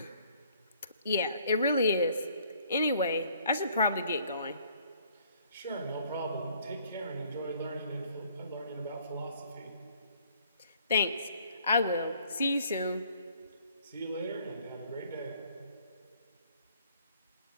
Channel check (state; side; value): inverted; both; correlation -0.60